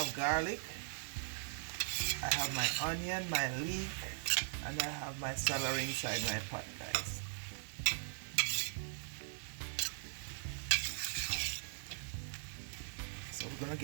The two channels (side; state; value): left; silent; digital silence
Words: garlic, I have my onion, my leek, and I have my celery inside my pot guys. So we're gonna